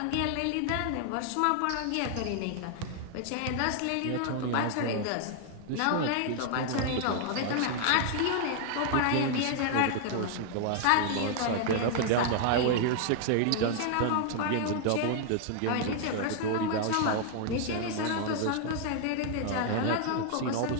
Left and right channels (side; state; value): both; different; correlation 0.00